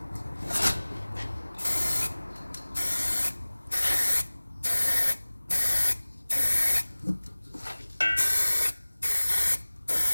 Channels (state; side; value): inverted; both; correlation -1.00